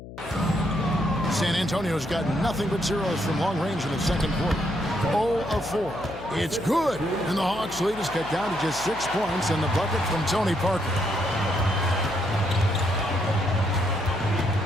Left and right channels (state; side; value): noise; left; hum, 14 dB below the sound